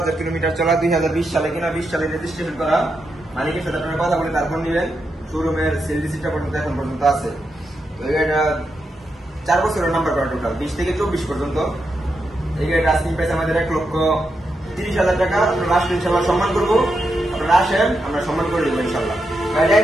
কিলোমিটার চলা, 2020 সালে কিনা, 20 সালে রেজিস্ট্রেশন করা। মালিকের সাথে আপনারা কথা বলে তারপর নিবেন। শোরুমের সেল রিসিপ্টটা পর্যন্ত এখন পর্যন্ত আছে। তো এই গাড়িটা 4 বছরের নাম্বার করা, টোটাল 20 থেকে 24 পর্যন্ত। এই গাড়িটা আস্কিং প্রাইস আমাদের 1,30,000 টাকা। আপনারা আসলে ইনশাল্লাহ সম্মান করবো। আপনারা আসেন, আমরা সম্মান করে দেবো ইনশাল্লাহ। গাড়িটা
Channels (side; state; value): both; normal; correlation 0.85